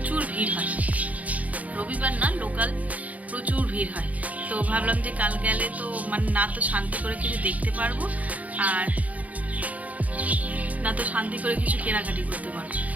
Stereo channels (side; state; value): left; late; 0.072 ms